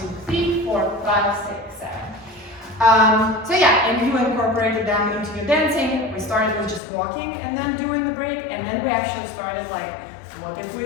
2, 3, 4, 5, 6, 7. So yeah, and you incorporated them into your dancing. We started with just walking and then doing the break, and then we actually started like, what if we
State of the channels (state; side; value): drops out; right; at 6.8 s